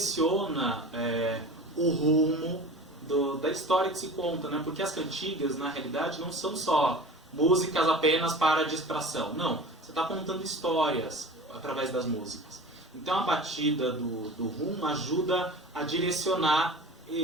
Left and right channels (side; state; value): both; normal; correlation 0.37